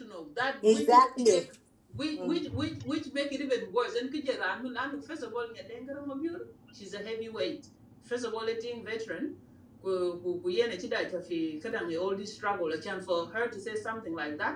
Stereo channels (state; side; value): identical; both; correlation 1.00